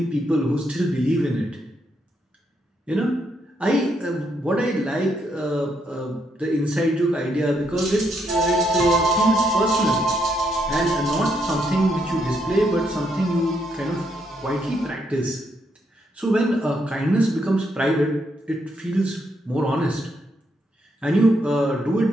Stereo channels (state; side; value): normal; both; correlation 0.77